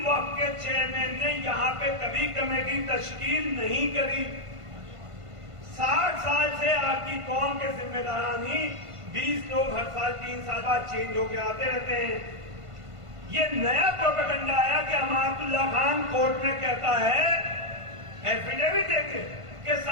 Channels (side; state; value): left; late; 1.5 ms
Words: वक्त के चेयरमैन ने यहाँ पे कभी कमेटी तश्कील नहीं करी। 60 साल से आपकी कौम के जिम्मेदारान ही 20 लोग हर साल 3 साल बाद चेंज होके आते रहते हैं। ये नया प्रोपेगेंडा आया कि अमातुल्लाह खान कोर्ट में कहता है, एफिडेविट देके कि